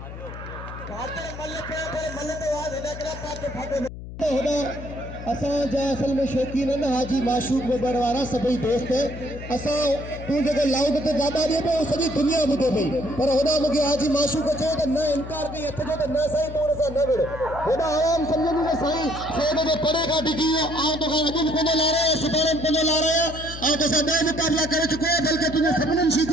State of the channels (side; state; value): left; noise; hum, 12 dB below the sound